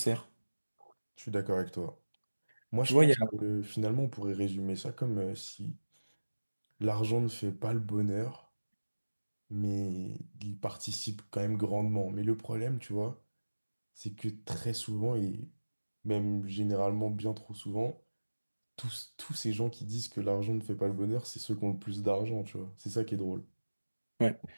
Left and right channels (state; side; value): inverted; both; correlation -1.00